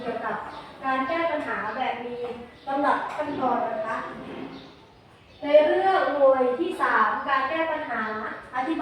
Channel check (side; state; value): both; identical; correlation 1.00